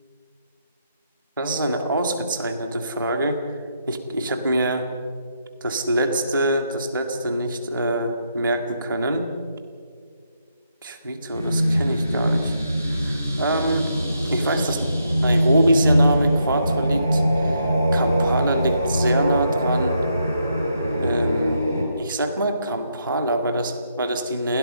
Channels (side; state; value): both; inverted; correlation -0.78